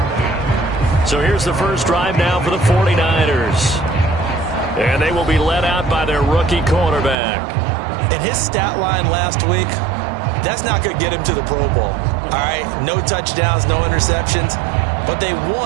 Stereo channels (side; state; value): left; drops out; at 7.2 s